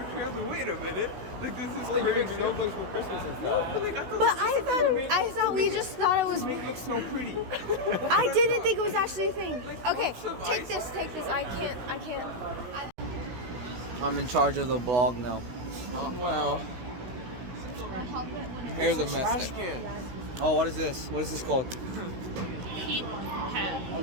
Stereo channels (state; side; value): late; left; 16 ms